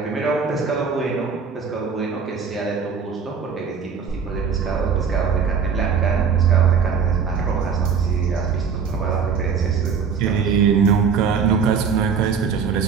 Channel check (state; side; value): quieter; left; 6.2 dB